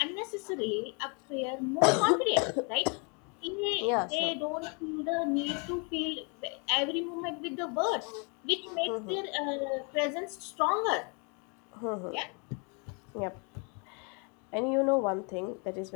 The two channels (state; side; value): quieter; right; 34.9 dB